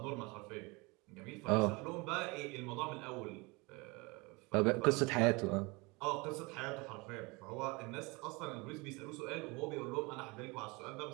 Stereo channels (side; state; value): left; quieter; 26.2 dB